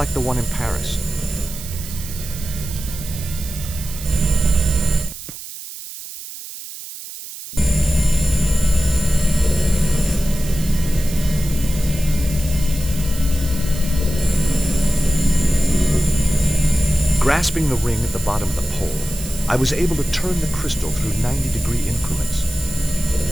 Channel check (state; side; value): noise; right; hiss, 12 dB below the sound